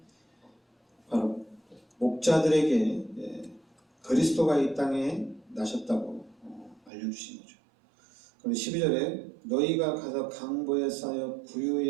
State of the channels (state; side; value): drops out; left; at 6.9 s